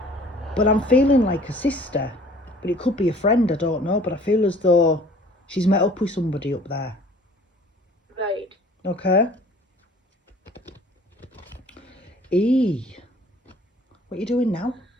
But I'm feeling like a sister. But it could be a friend, I don't know. But I feel as though she's met up with somebody up there. Right. Okay. What are you doing now?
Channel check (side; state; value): both; normal; correlation 0.51